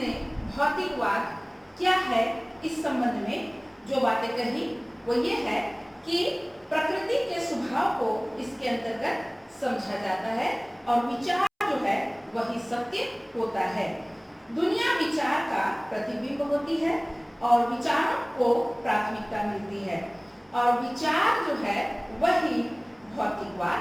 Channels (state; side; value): identical; both; correlation 1.00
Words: भौतिकवाद क्या है इस संबंध में जो बातें कही वो ये है कि प्रकृति के स्वभाव को इसके अंतर्गत समझा जाता है और विचार जो है वही सत्य होता है। दुनिया विचार का प्रतिबिंब होती है और विचारों को प्राथमिकता मिलती है और विचार जो है वही भौतिकवाद